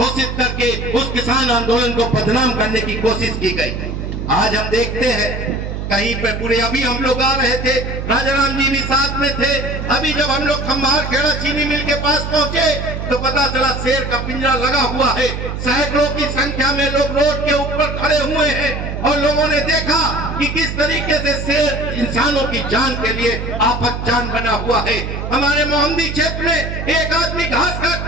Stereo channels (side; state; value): right; noise; hum, 5 dB below the sound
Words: करके उस किसान आंदोलन को बदनाम करने की कोशिश की गई। आज हम देखते हैं कहीं पे पूरे, अभी हम लोग आ रहे थे, राजाराम जी भी साथ में थे। अभी जब हम लोग खम्बार खेड़ा चीनी मिल के पास पहुंचे तो पता चला शेर का पिंजरा लगा हुआ है, सैकड़ों की संख्या में लोग रोड के ऊपर खड़े हुए हैं और लोगों ने देखा कि किस तरीके से शेर इंसानों की जान के लिए आफत जान बना हुआ है। हमारे मोहम्मदी क्षेत्र में एक आदमी घास